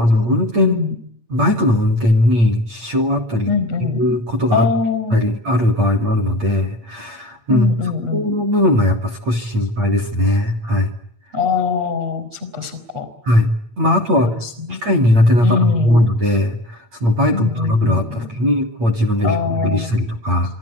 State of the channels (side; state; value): left; late; 8.6 ms